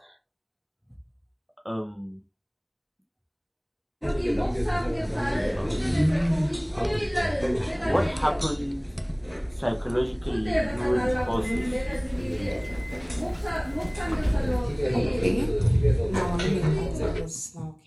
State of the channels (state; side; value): identical; both; correlation 1.00